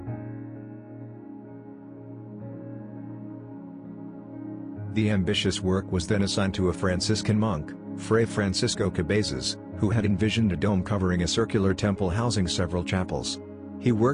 The ambitious work was then assigned to a Franciscan monk, Fray Francisco Cabezas, who had envisioned a dome covering a circular temple housing several chapels. He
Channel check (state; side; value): identical; both; correlation 1.00